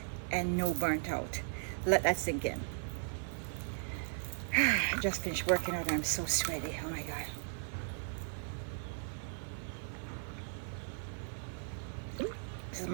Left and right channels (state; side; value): silent; left; 53 dB below the other